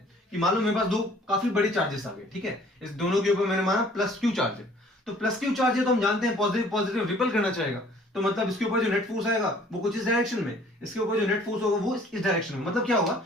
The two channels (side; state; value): both; normal; correlation 0.55